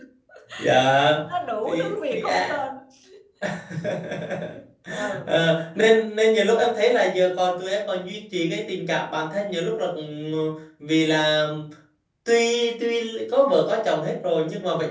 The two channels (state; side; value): identical; both; correlation 1.00